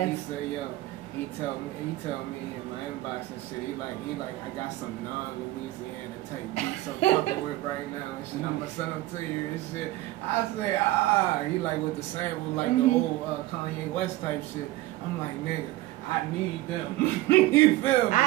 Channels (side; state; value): left; quieter; 17.3 dB